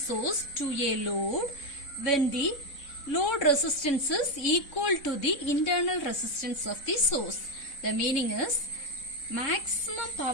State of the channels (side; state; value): right; late; 3.6 ms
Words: to a load when the load resistance is equal to the internal resistance of the source. The meaning is maximum